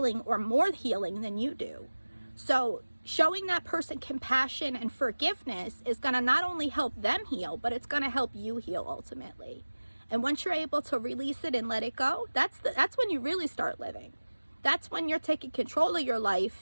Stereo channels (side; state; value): both; inverted; correlation -1.00